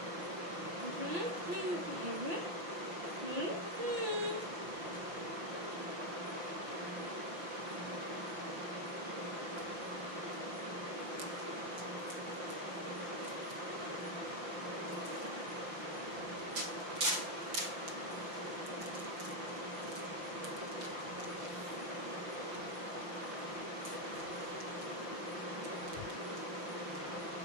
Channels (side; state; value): left; late; 5.9 ms